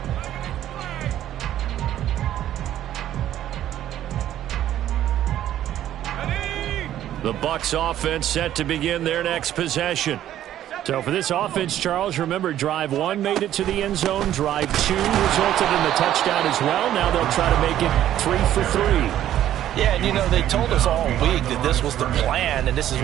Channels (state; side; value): quieter; left; 12.0 dB